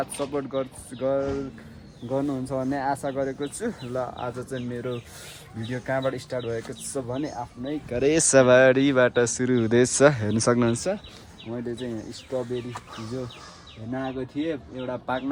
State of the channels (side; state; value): both; identical; correlation 1.00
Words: सपोर्ट गर्नुहुन्छ भन्ने आशा गरेको छु. ल आज चाहिँ मेरो भिडियो कहाँबाट स्टार्ट भएको छ भने आफ्नै घरेसबारीबाट सुरु हुँदैछ. हेर्न सक्नुहुन्छ. मैले चाहिँ यहाँ स्ट्रबेरी हिजो हेर्न आएको थिएँ. एउटा पाक्न